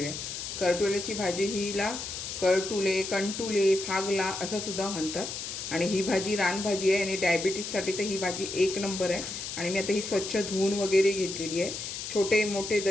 करटुल्याची भाजी हिला करटुले, कंटुले, फागला असं सुद्धा म्हणतात आणि ही भाजी रानभाजी आहे आणि डायबिटीजसाठी तर ही भाजी एक नंबर आहे। आणि मी आता ही स्वच्छ धुवून वगैरे घेतलेली आहे। छोटे मोठे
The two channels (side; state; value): left; noise; hiss, 6 dB below the sound